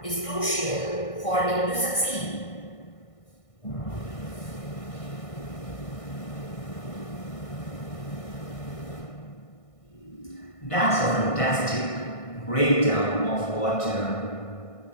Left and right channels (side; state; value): right; late; 1.6 ms